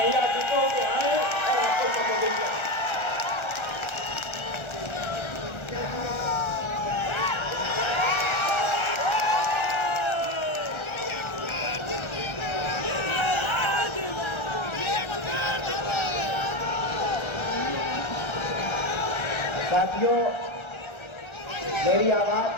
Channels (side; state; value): right; late; 1.3 ms